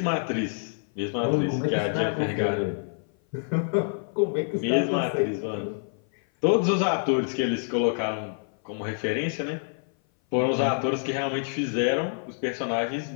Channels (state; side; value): silent; right; 57 dB below the other